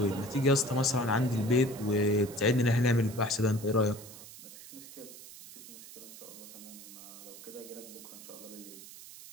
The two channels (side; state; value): right; noise; hiss, 16 dB below the sound